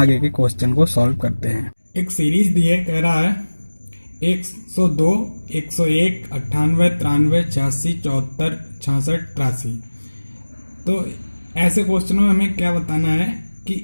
के क्वेश्चन को सॉल्व करते हैं। एक सीरीज दी है, कह रहा है 102, 101, 98, 93, 86, 74, 66, 83। तो ऐसे क्वेश्चनों में हमें क्या बताना है कि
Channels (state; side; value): inverted; both; correlation -1.00